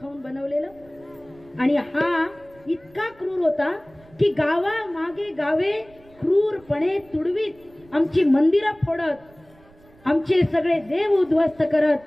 खाऊन बनवलेलं. आणि हा इतका क्रूर होता की गावा मागे गावे क्रूरपणे तुडवीत, आमची मंदिरं फोडत, आमचे सगळे देव उद्ध्वस्त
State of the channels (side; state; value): right; noise; rumble, 27 dB below the sound